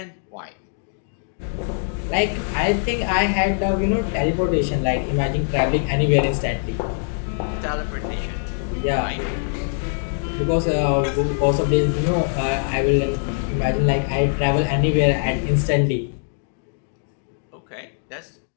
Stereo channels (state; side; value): silent; right; digital silence